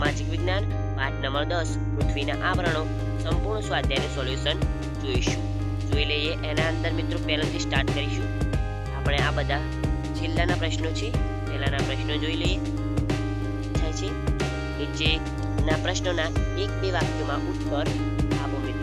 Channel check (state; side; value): identical; both; correlation 1.00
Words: વિજ્ઞાન પાઠ નંબર 10 પૃથ્વીના આવરણો સંપૂર્ણ સ્વાધ્યાયનું સોલ્યુશન જોઈશું. જોઈ લઈએ એના અંદર મિત્રો પહેલાથી સ્ટાર્ટ કરીશું. આપણે આ બધા છેલ્લાના પ્રશ્નો છે, પહેલાના પ્રશ્નો જોઈ લઈએ. થાય છે નીચેના પ્રશ્નોના 1-2 વાક્યોમાં ઉત્તર આપો